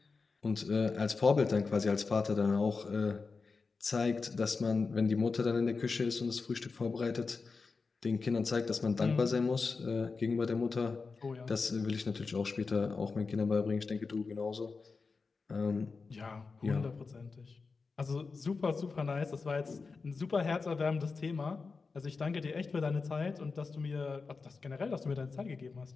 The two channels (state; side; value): quieter; right; 4.5 dB